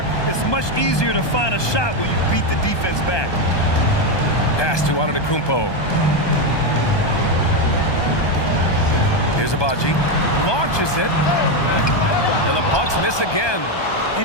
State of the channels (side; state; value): right; late; 1.2 ms